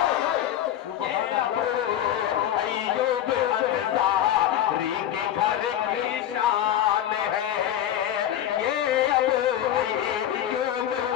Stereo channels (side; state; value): right; quieter; 11.2 dB